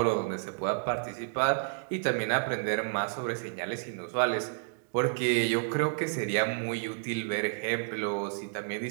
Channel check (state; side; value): silent; left; digital silence